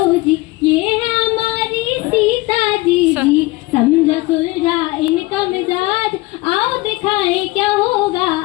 जी, ये है हमारी सीता जी जी। समझा सुलझा इनका मिजाज, आओ दिखाए क्या होगा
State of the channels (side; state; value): right; quieter; 21.2 dB